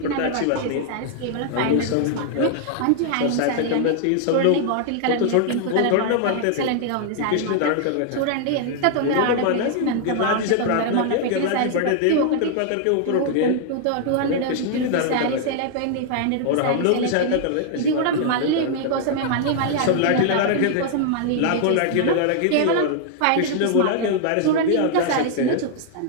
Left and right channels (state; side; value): different; both; correlation -0.01